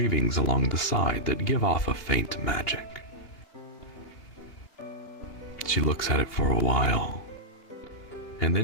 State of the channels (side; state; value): right; late; 2.8 ms